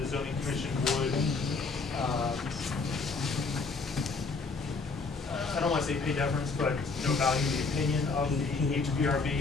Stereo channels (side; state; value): right; quieter; 4.2 dB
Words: zoning commission would, I don't want to say pay deference, but, value the opinion of the